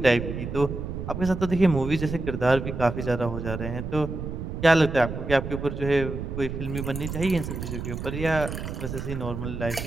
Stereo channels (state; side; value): noise; right; rumble, 6 dB below the sound